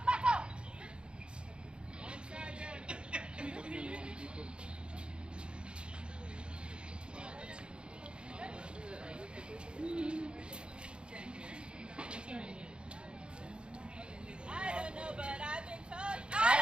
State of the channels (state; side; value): late; left; 0.054 ms